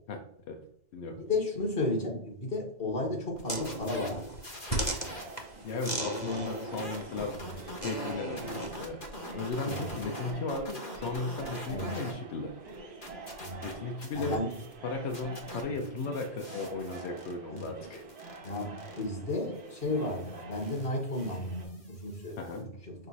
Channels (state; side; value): late; right; 2.0 ms